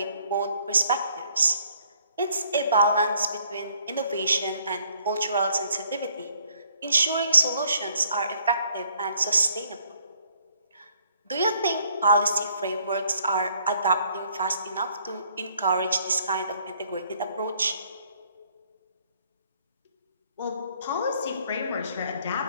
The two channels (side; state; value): both; inverted; correlation -0.65